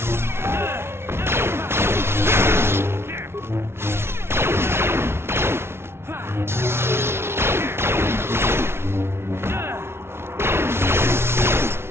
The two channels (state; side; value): late; left; 0.12 ms